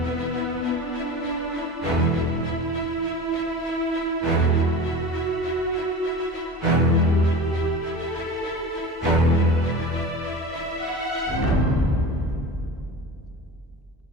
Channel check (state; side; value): normal; both; correlation 0.33